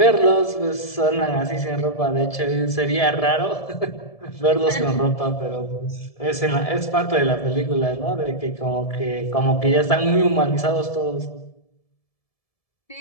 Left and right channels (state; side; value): late; right; 1.7 ms